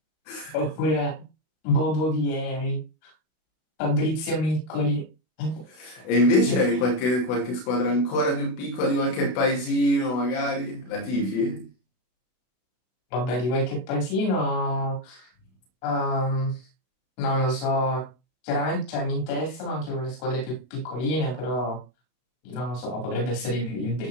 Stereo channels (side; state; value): right; late; 32 ms